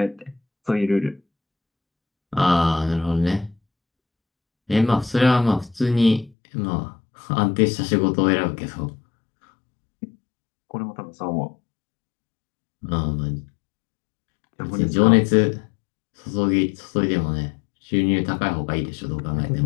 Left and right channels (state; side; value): drops out; right; at 6.3 s